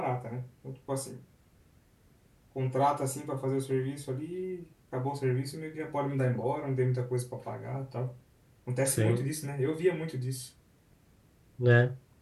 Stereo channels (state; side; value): identical; both; correlation 1.00